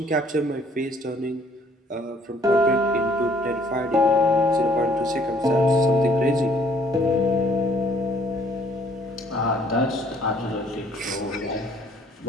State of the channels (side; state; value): both; normal; correlation 0.61